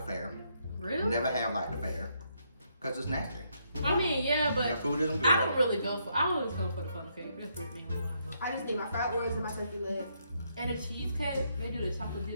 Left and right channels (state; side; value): inverted; both; correlation -0.76